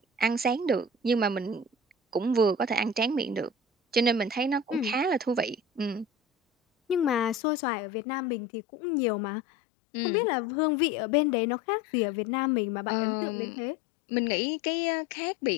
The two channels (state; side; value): drops out; right; at 7.4 s